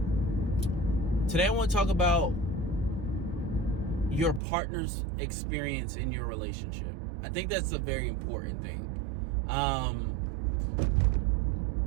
your partner's experience in your relationship. I think that's a very important thing.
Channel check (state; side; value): drops out; left; at 4.4 s